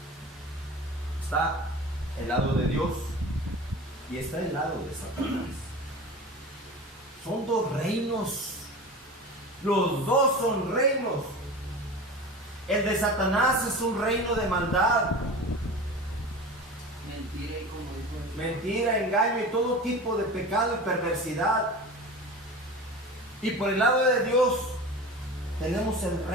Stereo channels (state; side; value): normal; both; correlation 0.33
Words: Está el lado de Dios y está el lado de Satanás. Son dos reinos. Los dos son reinos. El de Satanás es un reino de maldad. Mentira, engaño y todo tipo de pecado y perversidad. Y por el lado de Dios tenemos el